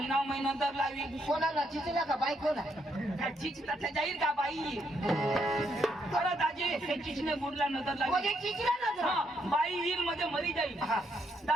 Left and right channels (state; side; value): normal; both; correlation 0.75